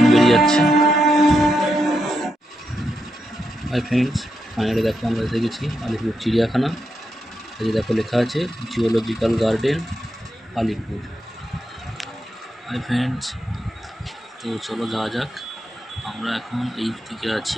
বেরিয়ে যাচ্ছে। হাই ফ্রেন্ডস, ফাইনালি দেখো আমরা এসে গেছি আলিপুর চিড়িয়াখানা। এই দেখো লেখা আছে zoological garden Alipore. Hi friends, তো চলো যাওয়া যাক। আমরা এখন এই দিকে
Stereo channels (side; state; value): both; normal; correlation 0.84